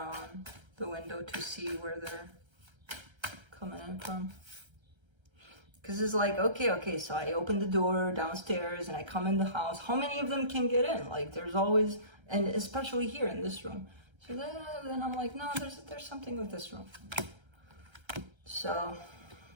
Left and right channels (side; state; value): left; late; 1.3 ms